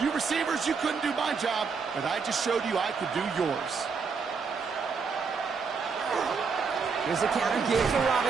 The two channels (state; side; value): quieter; left; 5.3 dB